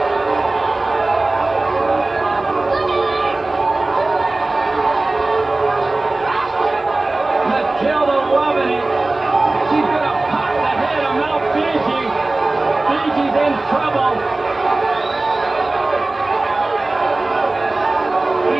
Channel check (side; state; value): left; quieter; 3.0 dB